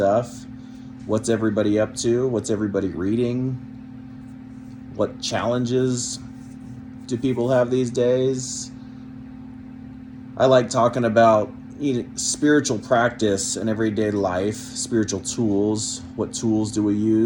What's everybody up to? What's everybody reading? What challenges do people have these days? I like talking about spiritual practice in everyday life, spiritual tools. What tools do we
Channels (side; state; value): both; identical; correlation 1.00